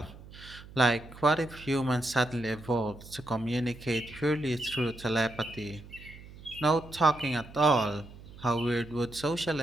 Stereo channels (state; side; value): noise; right; hum, 18 dB below the sound